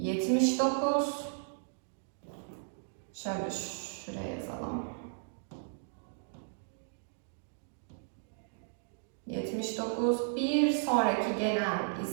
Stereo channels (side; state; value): left; silent; digital silence